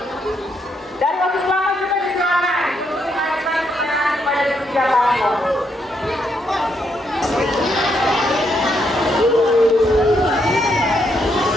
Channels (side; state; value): both; normal; correlation 0.76